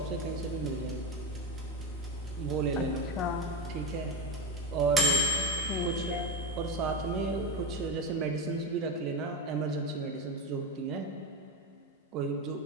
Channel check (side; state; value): both; normal; correlation 0.19